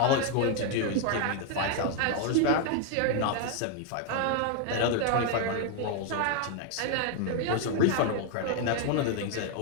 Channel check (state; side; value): different; both; correlation 0.00